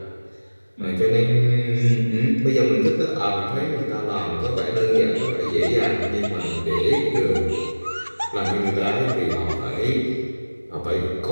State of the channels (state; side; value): inverted; both; correlation -1.00